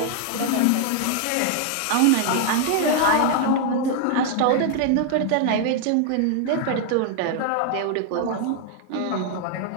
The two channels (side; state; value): both; different; correlation 0.00